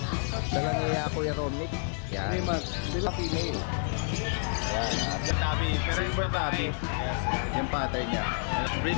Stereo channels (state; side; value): silent; right; 56 dB below the other